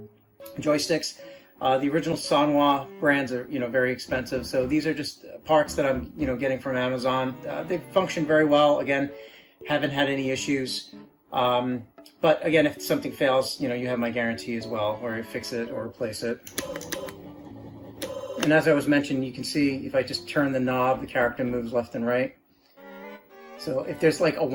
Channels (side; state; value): both; identical; correlation 1.00